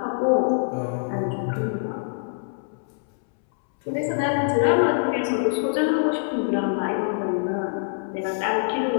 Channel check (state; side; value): silent; right; 62 dB below the other